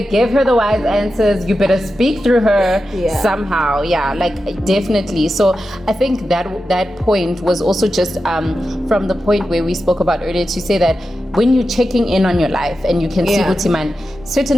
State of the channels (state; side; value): normal; both; correlation 0.91